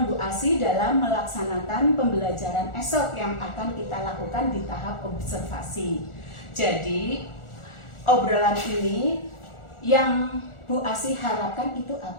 Bu Asih dalam melaksanakan pembelajaran esok yang akan kita lakukan di tahap observasi. Jadi, obrolan ini yang Bu Asih harapkan itu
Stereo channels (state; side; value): late; right; 1.4 ms